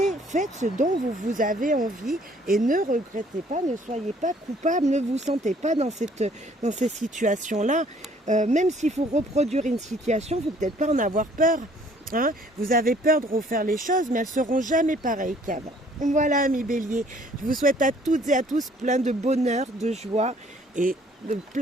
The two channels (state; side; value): normal; both; correlation 0.59